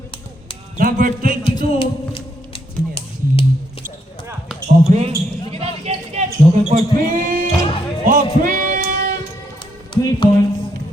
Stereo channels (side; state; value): both; normal; correlation 0.76